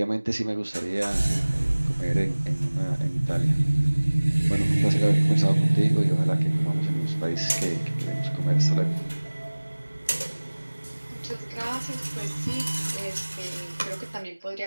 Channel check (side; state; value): both; inverted; correlation -1.00